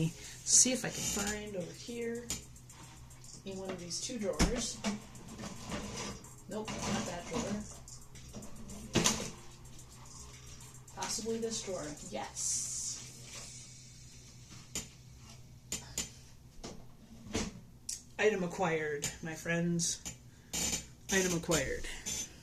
see if I can find over here in one of these 2 drawers. Nope, not that drawer. Possibly this drawer. Yes. Item acquired, my friends. Item acquired.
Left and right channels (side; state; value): both; identical; correlation 1.00